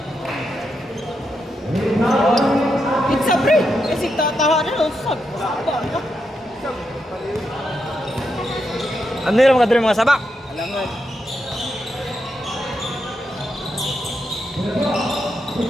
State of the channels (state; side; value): normal; both; correlation 0.83